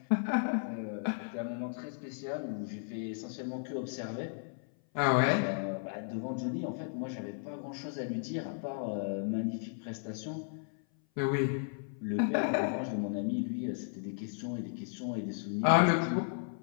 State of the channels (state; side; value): silent; right; 55 dB below the other